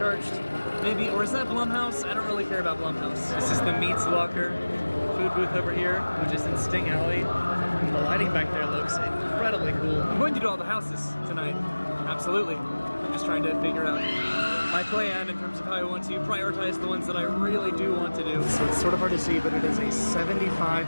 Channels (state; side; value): inverted; both; correlation -1.00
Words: maybe, or is that Blumhouse? I don't really care about Blumhouse. This is the Meats Locker food booth over here, which is in Sting Alley. The lighting back there looks incredibly cool. I'm going to do all the houses tonight, absolutely. I'm just trying to figure out my plan in terms of how I want to prioritize the ones that I really do want to do. So it's sort of hard to see, but it is a